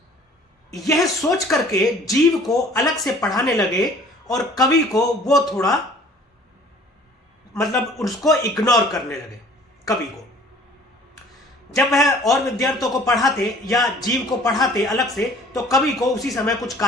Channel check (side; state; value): both; normal; correlation 0.52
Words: यह सोच करके जीव को अलग से पढ़ाने लगे और कवि को वो थोड़ा उसको इग्नोर करने लगे। कवि को जब वह और विद्यार्थियों को पढ़ाते या जीव को पढ़ाते अलग से, तो कवि को उसी समय कुछ